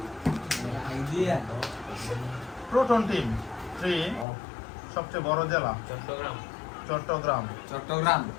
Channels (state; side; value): drops out; right; at 4.2 s